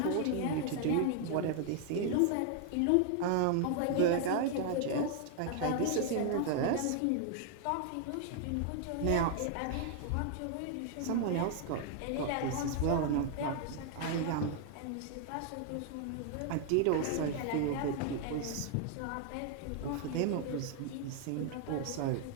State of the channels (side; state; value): both; different; correlation 0.00